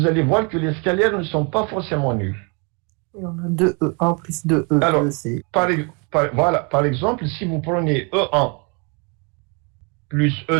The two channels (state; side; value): quieter; left; 33.6 dB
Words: allez voir que les scalaires ne sont pas forcément nuls. Et on a 2E1 plus 2E2. Alors, voilà, par exemple, si vous prenez E1 plus